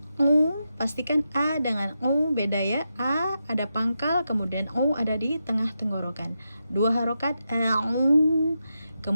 pastikan A dengan beda ya. A ada pangkal, kemudian ada di tengah tenggorokan. Dua harokat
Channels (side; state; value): both; inverted; correlation -0.87